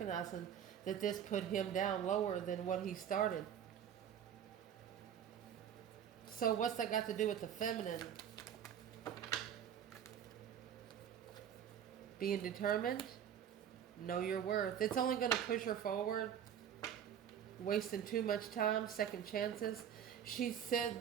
that this put him down lower than what he started. So what's that got to do with the feminine? Being determined, know your worth. It's only going to push her forward. Wasting too much time, second chances. She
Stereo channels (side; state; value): left; quieter; 9.1 dB